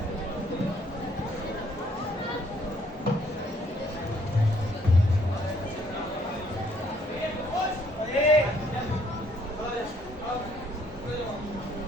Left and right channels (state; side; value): normal; both; correlation 0.66